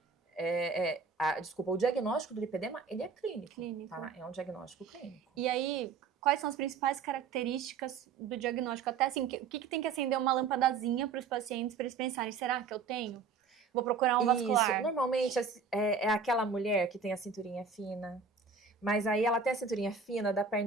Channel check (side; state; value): left; quieter; 5.3 dB